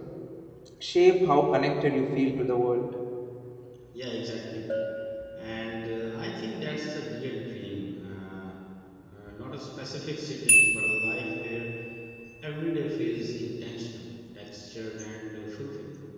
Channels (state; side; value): identical; both; correlation 1.00